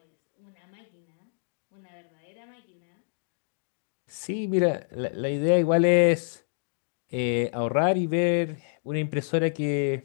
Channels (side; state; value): right; silent; digital silence